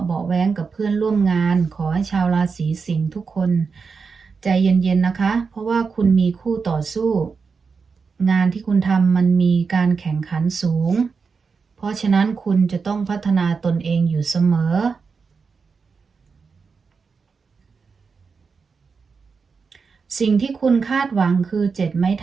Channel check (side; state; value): left; quieter; 5.2 dB